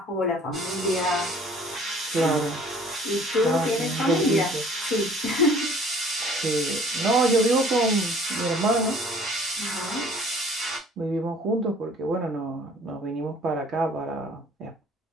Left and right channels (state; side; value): normal; both; correlation 0.53